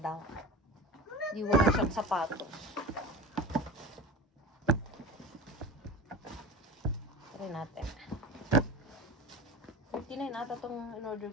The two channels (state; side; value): normal; both; correlation 0.31